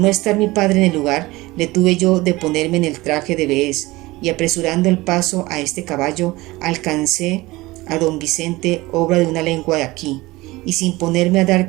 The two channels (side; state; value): left; quieter; 20.4 dB